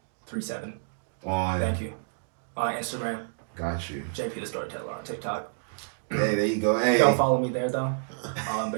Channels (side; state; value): left; silent; digital silence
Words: 37. On Thank you. On Instagram, got you. JP the Storyteller on TikTok. Hey, there you go. Hey. Don't follow me there though. I'll